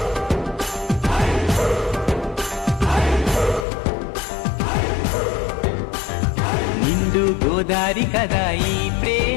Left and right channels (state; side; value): drops out; right; at 3.7 s